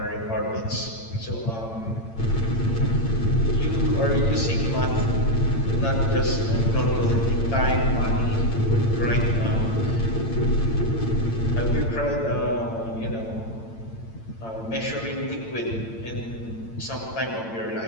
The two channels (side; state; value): right; late; 8.8 ms